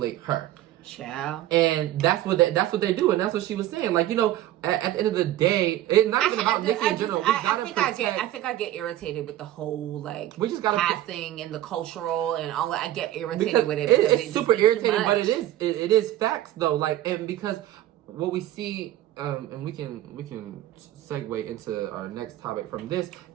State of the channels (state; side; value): quieter; left; 13.8 dB